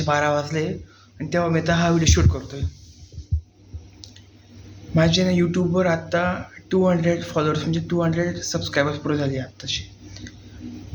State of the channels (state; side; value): identical; both; correlation 1.00